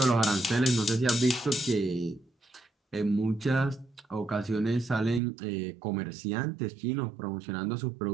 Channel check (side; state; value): left; drops out; at 5.2 s